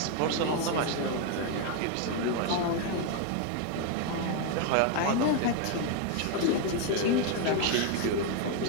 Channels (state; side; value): different; both; correlation 0.01